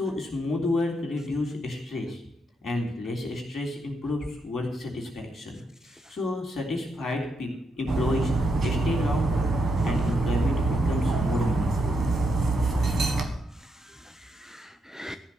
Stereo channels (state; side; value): normal; both; correlation 0.80